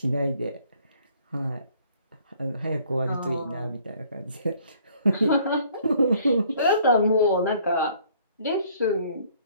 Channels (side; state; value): both; inverted; correlation -0.60